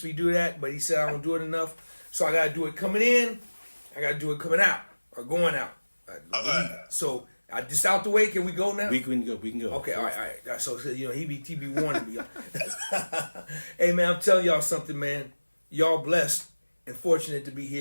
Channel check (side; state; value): both; inverted; correlation -1.00